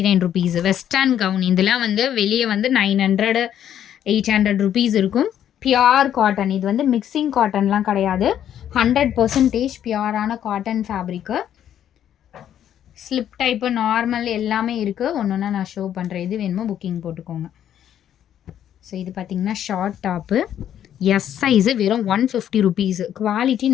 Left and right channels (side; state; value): right; quieter; 10.3 dB